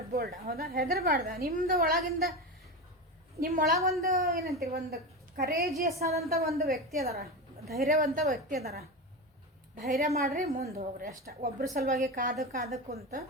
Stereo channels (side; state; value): both; normal; correlation 0.20